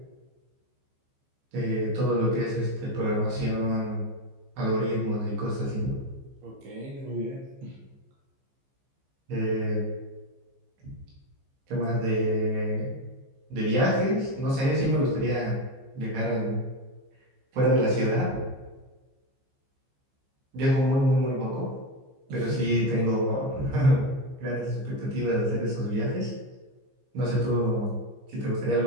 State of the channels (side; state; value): left; late; 15 ms